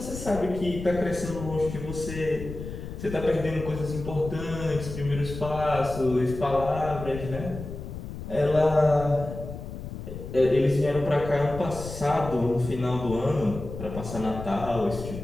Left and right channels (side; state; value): left; noise; rumble, 9 dB below the sound